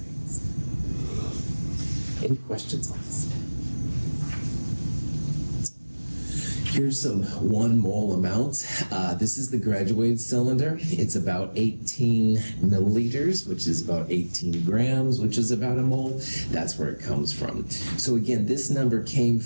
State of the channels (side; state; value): both; inverted; correlation -1.00